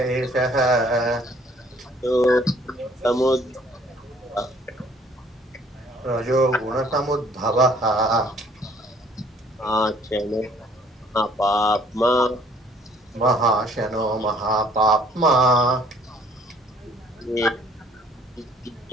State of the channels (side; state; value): both; normal; correlation 0.58